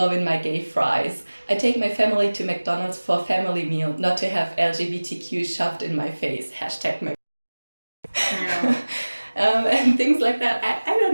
my gay fries. I take my family to McDonald's for a family meal, not to have LGBTQ shoved in my face. Hashtag my..." Yeah. And things like that. I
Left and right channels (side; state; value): both; inverted; correlation -1.00